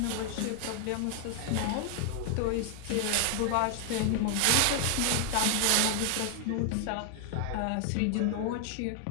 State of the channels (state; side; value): different; both; correlation 0.00